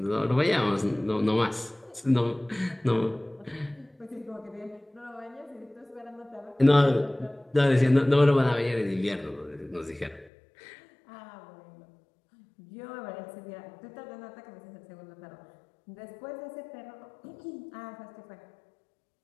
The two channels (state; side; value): drops out; right; at 10.3 s